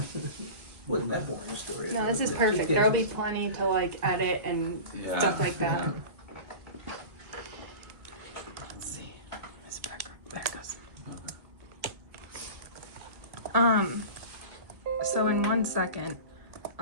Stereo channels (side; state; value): left; late; 1.9 ms